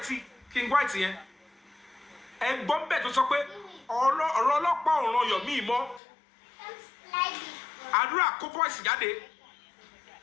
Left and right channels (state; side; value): drops out; right; at 6.0 s